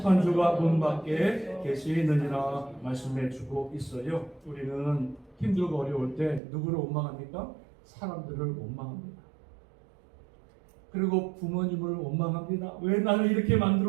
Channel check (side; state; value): left; drops out; at 6.4 s